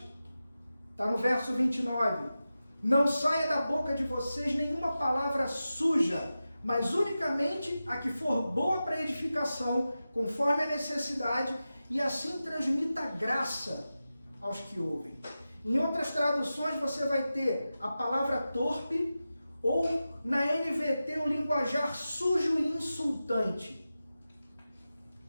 está no verso 29. Não saia da boca de vocês nenhuma palavra suja, mas unicamente a que for boa para edificação, conforme a necessidade, e assim transmita graça aos que ouvem. Em outras traduções você vai ter a palavra torpe Ou na NVT, o linguajar sujo e insultante.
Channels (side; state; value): both; inverted; correlation -0.93